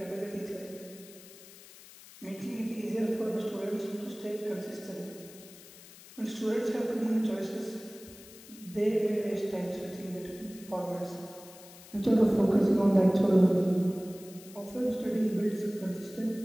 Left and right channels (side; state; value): left; noise; hiss, 19 dB below the sound